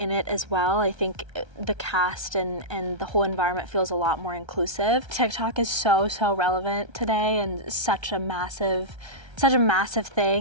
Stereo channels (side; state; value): left; late; 1.3 ms